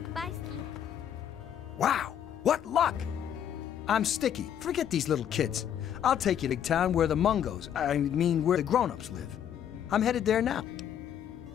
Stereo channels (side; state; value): right; quieter; 9.5 dB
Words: Bye, Ski. Wow, what luck! I'm Sticky. Forget these little kids. I'll take you to town where the Mungos, where the grown-ups live. I'm headed there now.